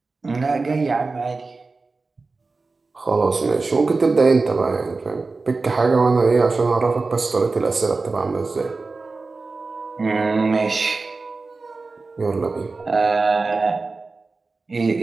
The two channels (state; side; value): quieter; left; 3.8 dB